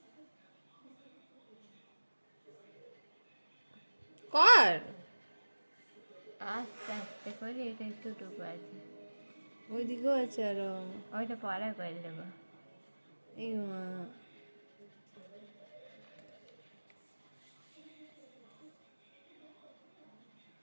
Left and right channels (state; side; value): inverted; both; correlation -1.00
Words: কর। আস্তে আস্তে করে এটা একটুটুকু আছে, ওইদিকেও আছে আরো। ওইটা পরে করে দেবো। এই মা,